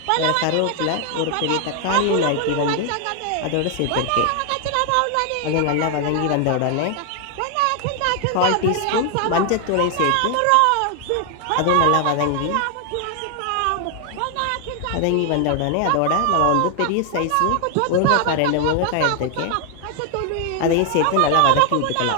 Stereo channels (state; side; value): different; both; correlation 0.00